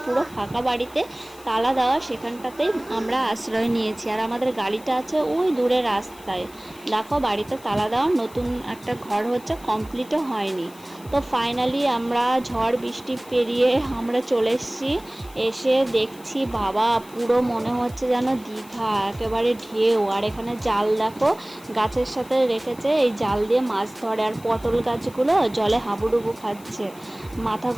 পুরো ফাঁকা বাড়িতে, তালা দেওয়া, সেখানটাতেই আমরা আশ্রয় নিয়েছি। আর আমাদের গাড়িটা আছে ওই দূরে রাস্তায়। দেখো বাড়িতে তালা দেওয়া, নতুন একটা ঘর হচ্ছে, কমপ্লিটও হয়নি। তো ফাইনালি আমরা ঝড় বৃষ্টি পেরিয়ে আমরা চলে এসেছি। এসে দেখছি বাবা, পুরো মনে হচ্ছে যেন দীঘা, একেবারে ঢেউ। আর এখানে জাল দেখো গাছের সাথে রেখেছে, এই জাল দিয়ে মাছ ধরে। আর পটল গাছগুলো জলে হাবুডুবু খাচ্ছে,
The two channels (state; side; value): noise; left; hiss, 22 dB below the sound